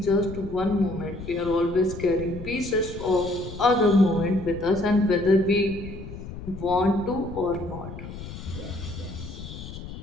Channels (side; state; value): left; noise; rumble, 11 dB below the sound